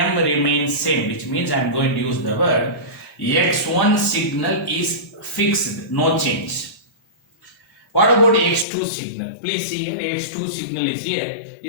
remains same, which means I am going to use the word x1 signal is fixed, no change. What about x2 signal? Please see here, x2 signal is here.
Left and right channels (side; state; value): right; drops out; at 8.7 s